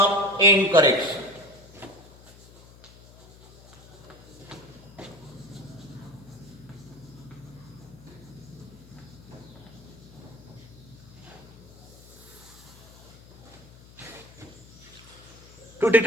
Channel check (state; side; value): noise; left; hum, 21 dB below the sound